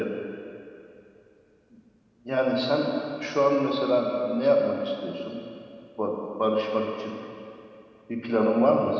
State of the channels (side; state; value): both; identical; correlation 1.00